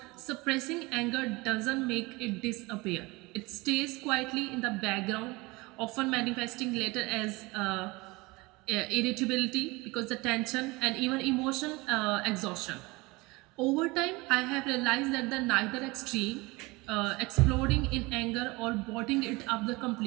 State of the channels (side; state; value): left; quieter; 23.7 dB